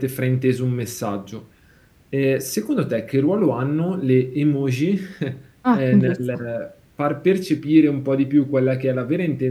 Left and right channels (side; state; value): both; identical; correlation 1.00